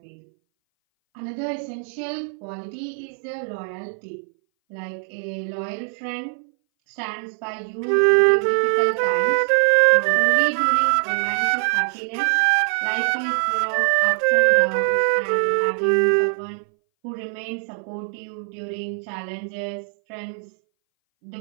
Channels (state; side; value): silent; left; 60 dB below the other